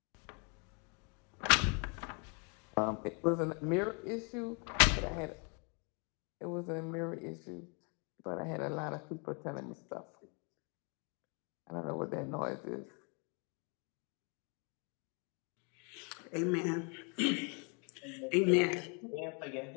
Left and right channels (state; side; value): quieter; right; 35.7 dB